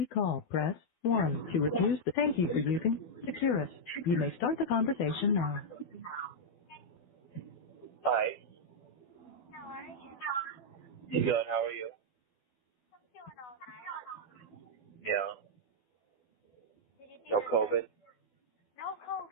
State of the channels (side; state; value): right; late; 12 ms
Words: call, press 1. To refuse the thank you for using Securus. You may start the conversation now. Hi. How are you? Good. How are you? I'm doing all right. Yeah. Did you do No the test? COVID. No